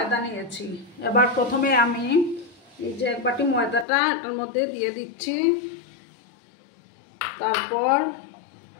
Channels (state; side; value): drops out; right; at 3.9 s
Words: নিয়েছি। এবার প্রথমে আমি এই যে 1 বাটি ময়দাটা এটার মধ্যে দিয়ে দিচ্ছি। তারপর